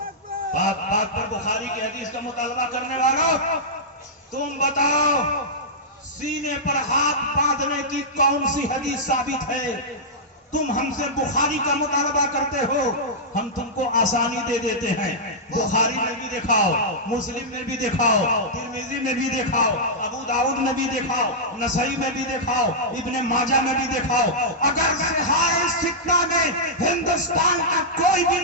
بات پر بخاری کی حدیث کا مطالبہ کرنے والوں, تم بتاؤ سینے پر ہاتھ باندھنے کی کون سی حدیث ثابت ہے؟ تم ہم سے بخاری کا مطالبہ کرتے ہو, ہم تم کو آسانی دے دیتے ہیں. بخاری میں بھی دکھاؤ, مسلم میں بھی دکھاؤ, ترمذی میں بھی دکھاؤ, ابو داؤد میں بھی دکھاؤ, نسائی میں بھی دکھاؤ, ابن ماجہ میں بھی دکھاؤ. اگر صحاح ستہ میں ہندوستان کا کوئی بھی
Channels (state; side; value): normal; both; correlation -0.10